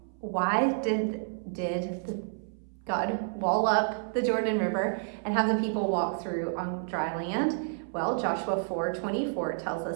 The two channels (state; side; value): silent; left; 58 dB below the other